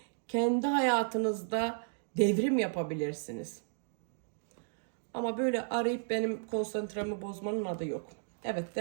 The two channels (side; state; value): left; silent; digital silence